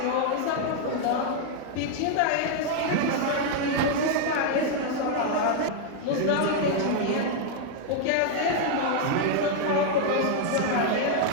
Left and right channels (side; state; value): both; different; correlation 0.00